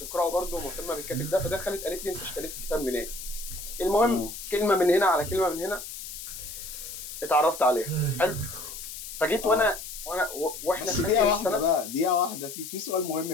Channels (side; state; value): left; noise; hiss, 10 dB below the sound